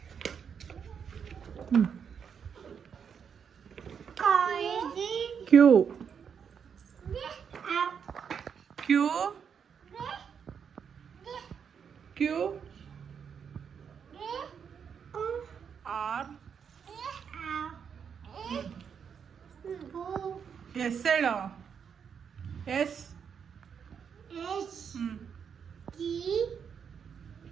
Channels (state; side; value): quieter; left; 7.1 dB